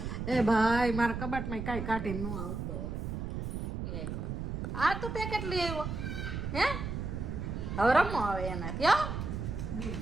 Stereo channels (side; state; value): right; noise; rumble, 4 dB below the sound